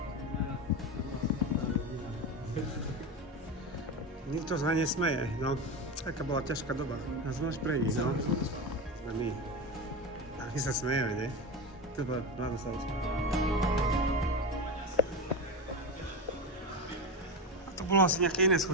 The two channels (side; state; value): both; normal; correlation 0.20